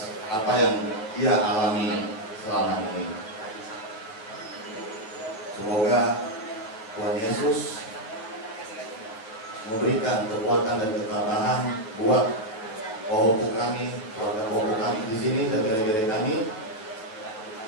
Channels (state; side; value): late; right; 9.2 ms